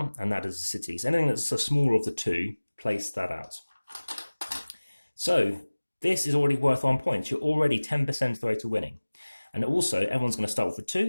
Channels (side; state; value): both; inverted; correlation -1.00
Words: and that is a city. So anything that's the smaller of the two, place that out. So this is already worth 1 point. You're already 10% of the way to winning. And also everyone's going to start off with